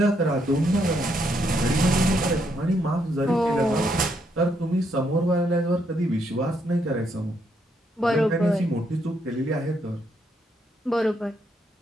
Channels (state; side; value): normal; both; correlation 0.75